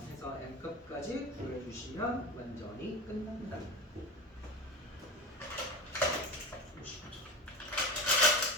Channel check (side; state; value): both; normal; correlation 0.27